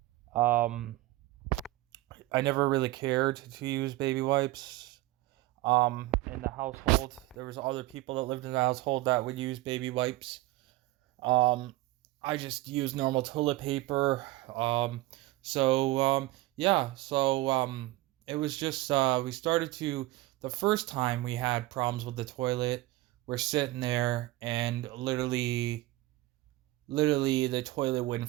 Um, I never really cared to use baby wipes. In the household, there was other people that lived in the household that would use baby wipes. Um, I just used normal toilet paper. Yeah, it was just we started to the first time we had problems with the toilet. We're sitting there and literally the toilet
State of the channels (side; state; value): left; quieter; 18.1 dB